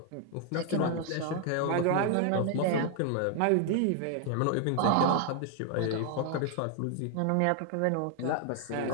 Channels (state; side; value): different; both; correlation 0.00